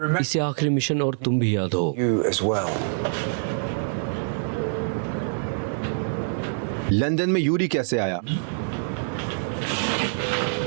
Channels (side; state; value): left; silent; digital silence